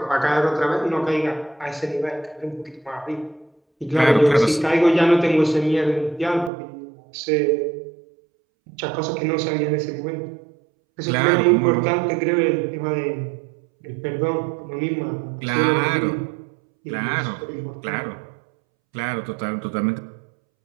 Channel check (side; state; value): left; drops out; at 6.5 s